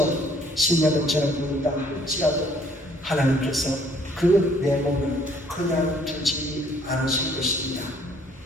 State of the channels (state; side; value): normal; both; correlation 0.61